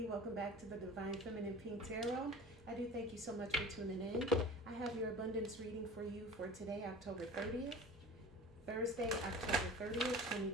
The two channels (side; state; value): both; normal; correlation 0.39